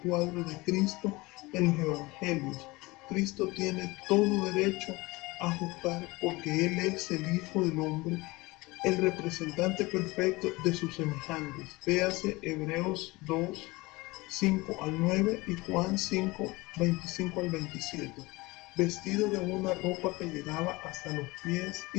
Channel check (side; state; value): right; quieter; 22.4 dB